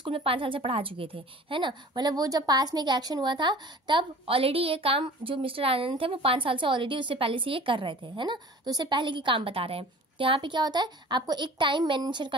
में 5 साल से पढ़ा चुके थे, है ना। मतलब वो जब पास में एक एक्शन हुआ था तब ऑलरेडी ये काम जो मिस्टर आनंद थे वो 5 साल से ऑलरेडी उससे पहले से ये कर रहे थे, है ना। तो उससे पहले की काम बता रहे हैं। तो यहाँ पे क्या होता है? आपको एक टाइम मेंशन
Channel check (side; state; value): both; normal; correlation 0.44